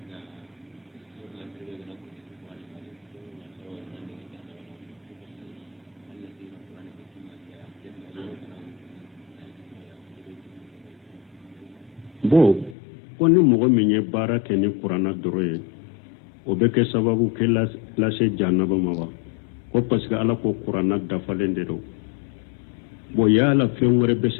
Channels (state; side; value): drops out; right; at 12.8 s